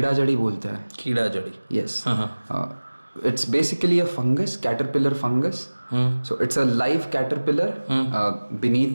जड़ी बोलते हैं. कीड़ा जड़ी. Yes. It's basically a fungus, caterpillar fungus. So it's a live caterpillar beneath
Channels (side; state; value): both; inverted; correlation -1.00